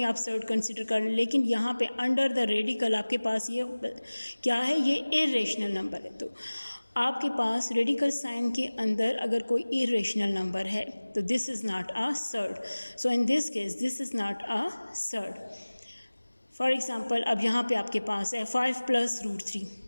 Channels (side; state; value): both; inverted; correlation -1.00